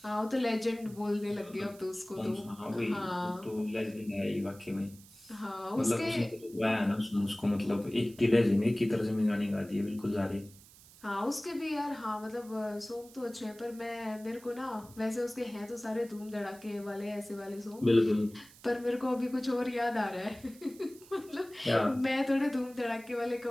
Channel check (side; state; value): right; noise; hiss, 22 dB below the sound